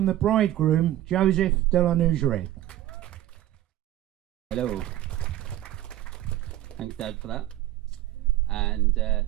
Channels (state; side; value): quieter; left; 13.8 dB